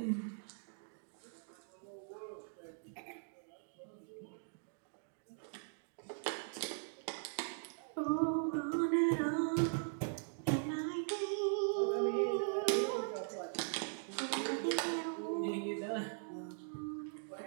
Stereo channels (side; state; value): left; silent; digital silence